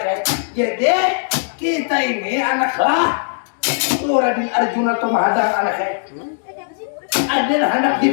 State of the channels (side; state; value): right; silent; digital silence